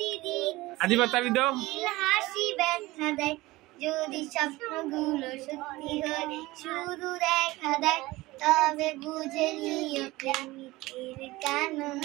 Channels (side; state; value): left; quieter; 19.6 dB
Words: আদিবা তালি দাও। হাসি ব্যথা দেয়, যদি স্বপ্নগুলো সত্যি হয় শুধু দেখা দেয়, তবে বুঝে নিও প্রেমিকের কেন